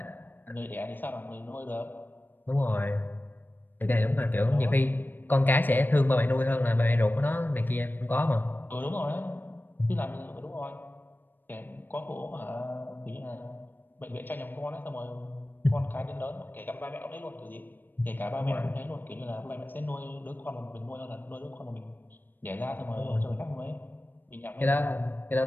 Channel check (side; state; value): right; late; 0.092 ms